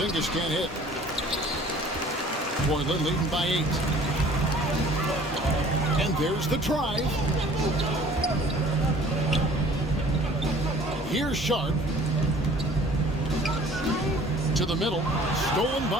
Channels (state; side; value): normal; both; correlation 0.51